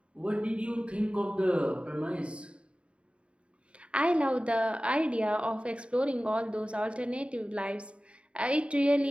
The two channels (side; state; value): left; late; 0.059 ms